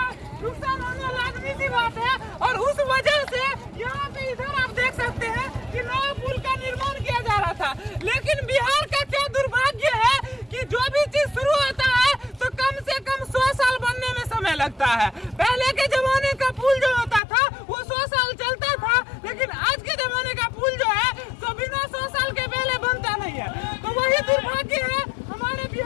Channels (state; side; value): drops out; right; at 17.2 s